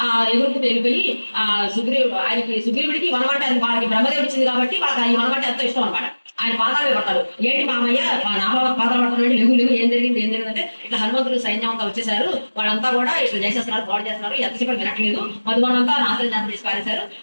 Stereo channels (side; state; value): both; inverted; correlation -1.00